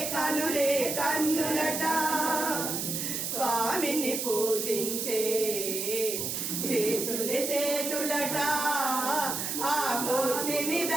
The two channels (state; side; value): noise; right; hiss, 2 dB below the sound